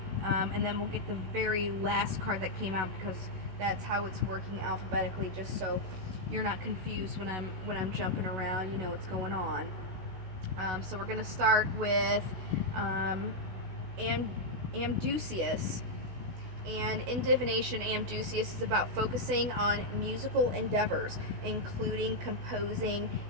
and then we'll get the very last card that came out, because that's how it's working alphabetically, just so you're not confused when I'm jumping around. You know what's going on. So we're going to start with Amdusius. And in divination, Amdusius is about focusing on musical endeavors, including composing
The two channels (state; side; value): late; left; 16 ms